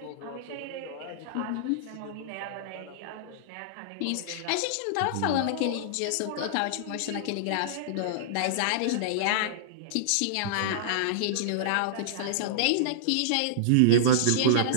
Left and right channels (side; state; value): both; different; correlation -0.02